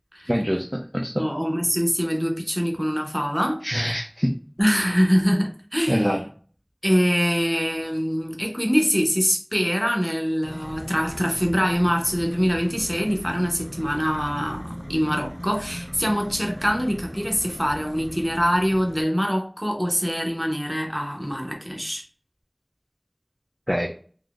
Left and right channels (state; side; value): identical; both; correlation 1.00